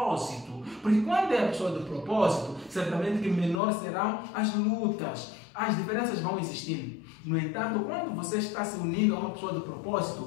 Porque quando é a pessoa do propósito, certamente que menor serão as lutas, as diferenças vão existindo. No entanto, quando você está se unindo a uma pessoa do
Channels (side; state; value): right; drops out; at 3.6 s